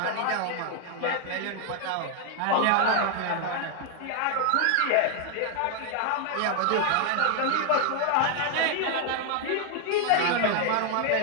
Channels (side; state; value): both; different; correlation 0.00